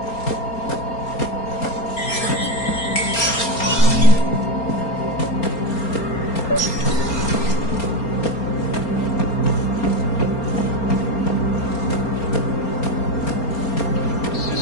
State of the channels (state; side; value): late; right; 4.3 ms